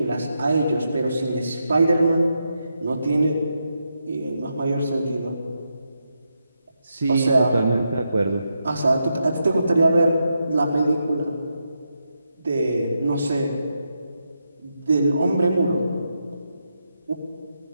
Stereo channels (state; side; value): inverted; both; correlation -0.84